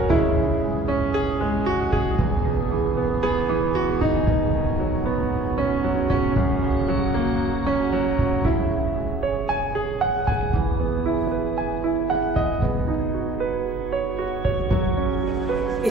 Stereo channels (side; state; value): right; noise; hum, 11 dB below the sound